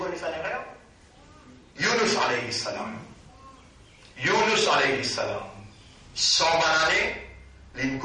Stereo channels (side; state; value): both; identical; correlation 1.00